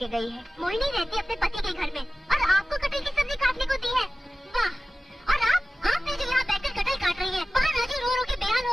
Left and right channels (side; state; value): both; normal; correlation 0.96